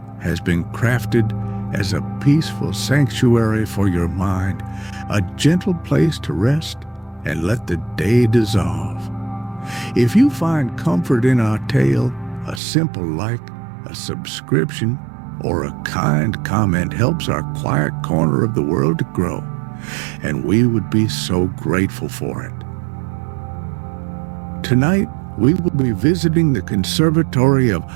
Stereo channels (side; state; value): left; drops out; at 12.6 s